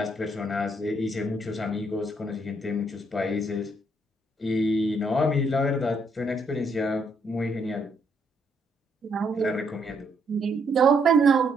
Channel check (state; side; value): normal; both; correlation 0.72